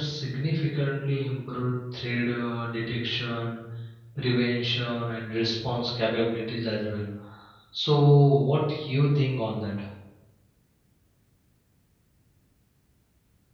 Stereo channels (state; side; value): identical; both; correlation 1.00